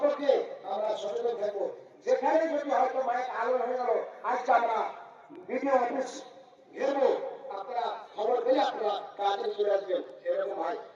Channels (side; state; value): both; identical; correlation 1.00